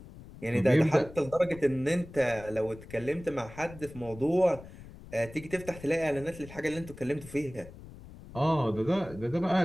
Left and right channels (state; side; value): noise; left; rumble, 17 dB below the sound